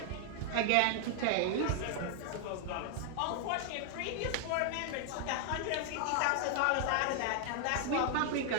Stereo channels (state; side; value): different; both; correlation 0.00